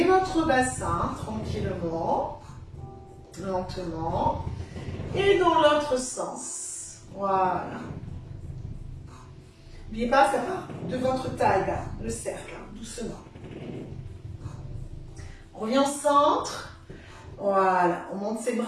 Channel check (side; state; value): both; identical; correlation 1.00